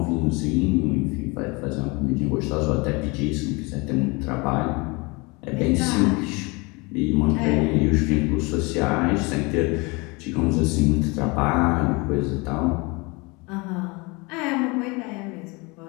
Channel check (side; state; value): right; quieter; 26.9 dB